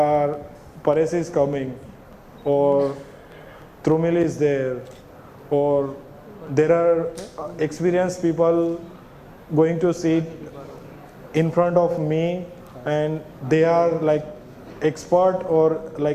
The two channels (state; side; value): identical; both; correlation 1.00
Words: Paresh is coming, or Trumil is there, or there are experienced people going to sit in front of me and they are like expert or